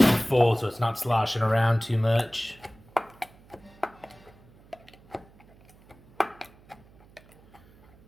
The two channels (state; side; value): noise; right; hum, 27 dB below the sound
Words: full so it's not sloshing around too much.